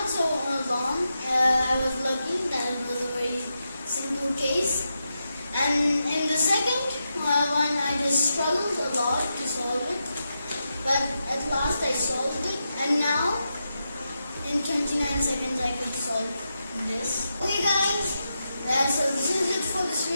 so long. I was lucky that it was a very simple case. And in the second one, I just struggled a lot to solve it. But at last I solved it. And now, in 29 seconds, I could solve this. Okay guys, so this is it for this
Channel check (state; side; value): inverted; both; correlation -0.87